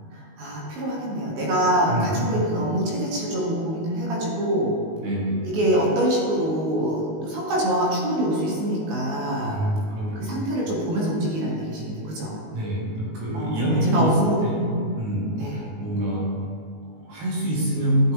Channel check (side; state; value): left; late; 19 ms